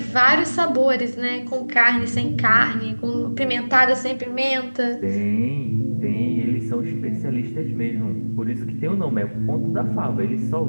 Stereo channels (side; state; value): both; inverted; correlation -1.00